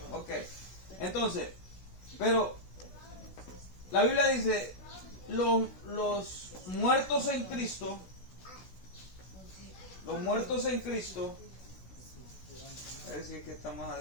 Ok. Entonces, pero la Biblia dice, los muertos en Cristo, a ver si es que está más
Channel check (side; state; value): right; late; 16 ms